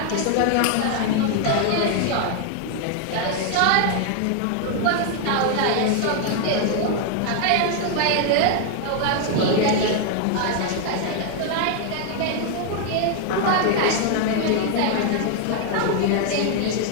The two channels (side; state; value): both; different; correlation 0.00